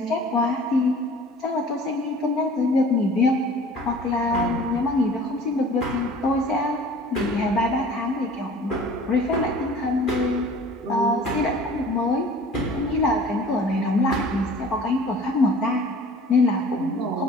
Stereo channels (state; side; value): normal; both; correlation 0.47